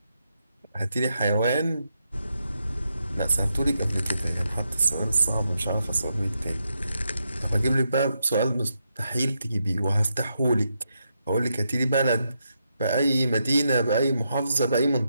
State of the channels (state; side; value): inverted; both; correlation -0.83